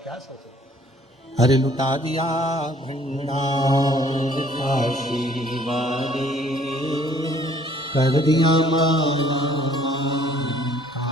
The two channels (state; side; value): normal; both; correlation 0.59